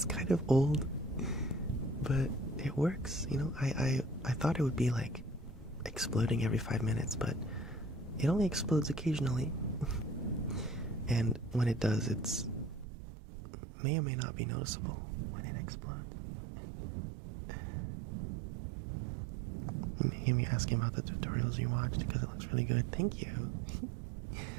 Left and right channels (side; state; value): left; drops out; at 12.9 s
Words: kind of old, but it works, you know. I thought it would be like exploding every 5 minutes, but it only explodes occasionally. And when it does, it's may or may not be noticeable when it explodes. You may hear me asking about the tutorials you watched because it looks really good. Thank you.